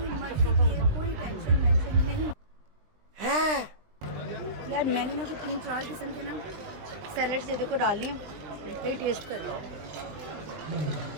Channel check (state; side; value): late; left; 20 ms